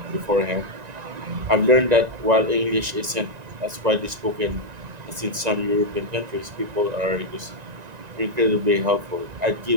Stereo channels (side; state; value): left; late; 1.9 ms